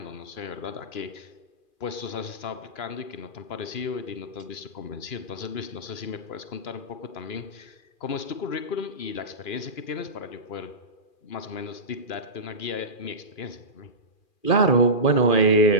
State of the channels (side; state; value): right; late; 2.4 ms